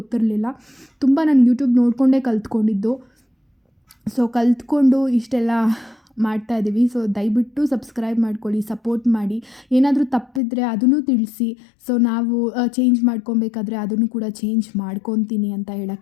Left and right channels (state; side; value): drops out; right; at 10.4 s